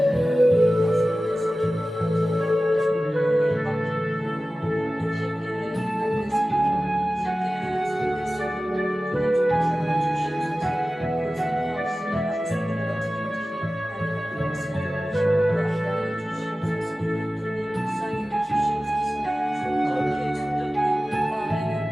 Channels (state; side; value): normal; both; correlation 0.96